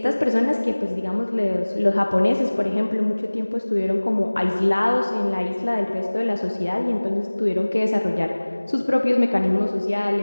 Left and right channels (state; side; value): inverted; both; correlation -1.00